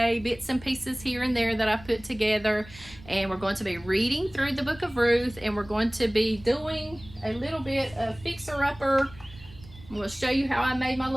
bits and pieces here and there that I put together. And we're going to be reading through the book of Ruth, and we're going to be doing a little bit of fixer-upper. I'm going to show you how I made my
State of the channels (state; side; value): noise; right; rumble, 20 dB below the sound